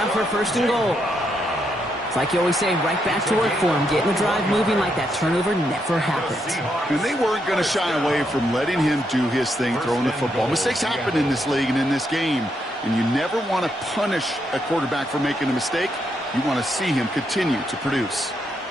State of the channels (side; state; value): both; normal; correlation 0.79